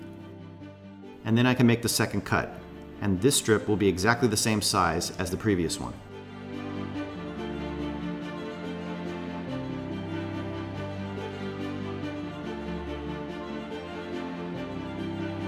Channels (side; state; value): both; identical; correlation 1.00